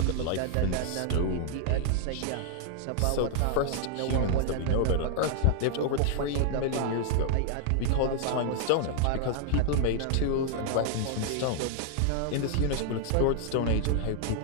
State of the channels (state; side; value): different; both; correlation 0.00